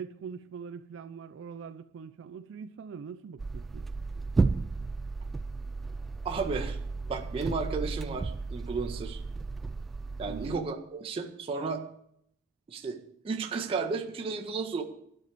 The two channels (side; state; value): left; quieter; 3.9 dB